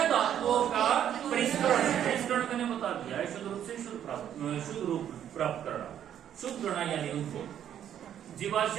का परिष्करण। परिष्करण मैंने बता दिया है, शुद्ध रूप से शुद्ध रूप प्राप्त करना, शुद्ध करना यानी उनको।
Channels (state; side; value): quieter; left; 10.0 dB